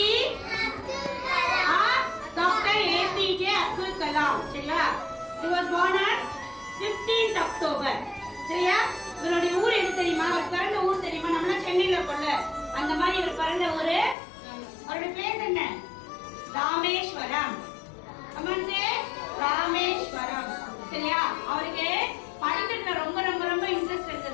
Dr. APJ Abdul Kalam. சரியா? He was born on 15th October. சரியா? இவருடைய ஊர் எது தெரியுமா? அவர் பிறந்த ஊர் தெரியுமா? நம்ம சென்னையில இருக்கோம்ல, அந்த மாதிரி இவர் பிறந்த ஊரு. அவருடைய பேர் என்ன? ராமேஸ்வரம். அம்மாஞ்சே ராமேஸ்வரம். சரியா? அவருக்கு படிக்கிறதுல ரொம்ப ரொம்ப ரொம்ப இன்ட்ரெஸ்ட்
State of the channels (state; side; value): drops out; right; at 14.2 s